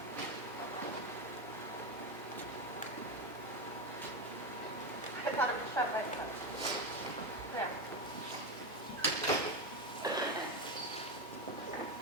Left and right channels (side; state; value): both; normal; correlation 0.13